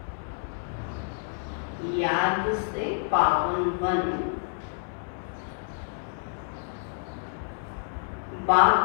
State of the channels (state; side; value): silent; right; digital silence